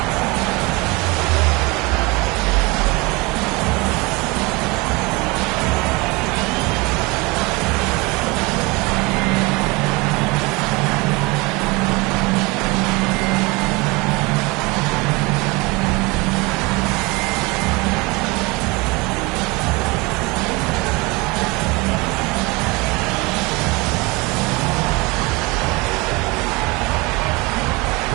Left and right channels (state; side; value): quieter; left; 25.3 dB